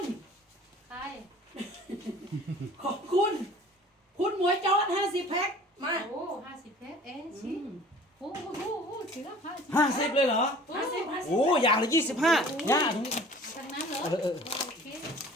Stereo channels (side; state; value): both; normal; correlation 0.47